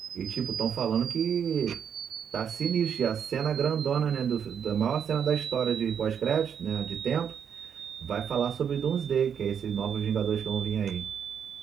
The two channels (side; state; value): left; quieter; 7.8 dB